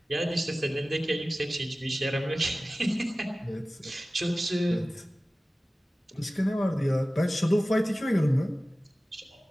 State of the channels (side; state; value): both; normal; correlation 0.96